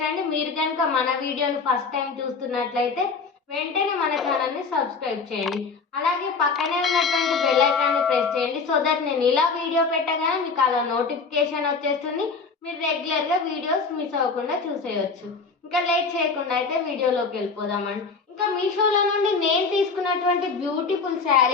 అండి. మీరు కనుక మన వీడియోని ఫస్ట్ టైం చూస్తున్నట్లయితే వెంటనే మన ఛానల్ ని సబ్స్క్రైబ్ చేయండి. అలాగే పక్కనే ఉన్నటువంటి బెల్ ఐకాన్ ని ప్రెస్ చేయండి. సో దట్ నేను ఇలా వీడియో పెట్టగానే మీకు అలా నోటిఫికేషన్ వచ్చేస్తుంది. మీరు రెగ్యులర్ గా వీడియోస్ మిస్ అవ్వకుండా చూసేయచ్చు. ఇంకా లేట్ చేయకుండా అయితే వీడియోలోకి వెళ్ళిపోదామండి. ఇంకా మీషోలో నుండి నేను తీసుకున్నటువంటి బ్యూటిఫుల్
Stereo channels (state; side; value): quieter; right; 4.7 dB